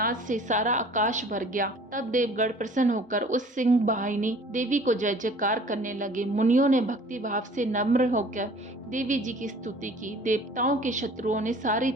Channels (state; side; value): normal; both; correlation 0.49